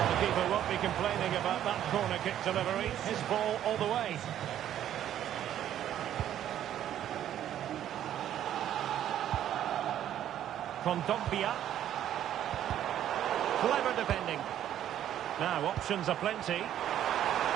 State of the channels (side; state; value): left; quieter; 11.2 dB